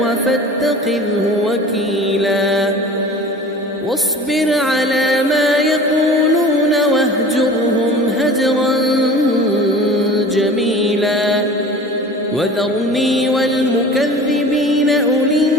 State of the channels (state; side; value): normal; both; correlation 0.41